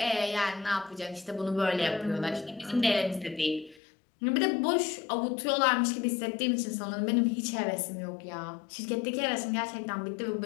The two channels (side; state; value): right; drops out; at 3.8 s